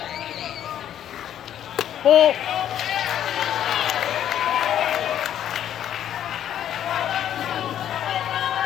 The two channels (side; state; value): right; quieter; 10.5 dB